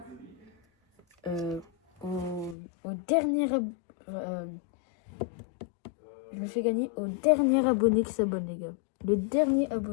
au dernier je le fais gagner au dernier abonné qui s'abonne, les gars. Le dernier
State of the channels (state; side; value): drops out; right; at 2.6 s